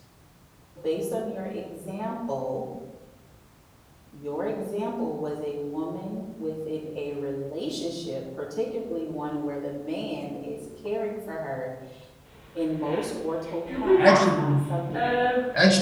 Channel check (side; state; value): both; identical; correlation 1.00